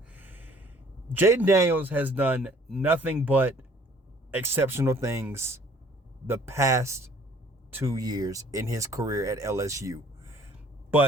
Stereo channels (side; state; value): both; normal; correlation 0.56